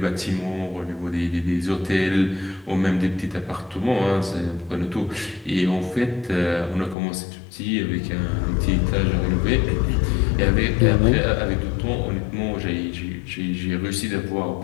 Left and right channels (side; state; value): right; drops out; at 7.0 s